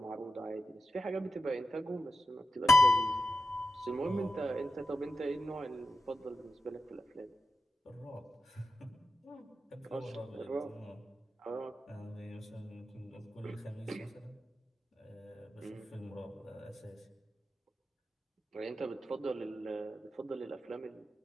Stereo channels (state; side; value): normal; both; correlation 0.90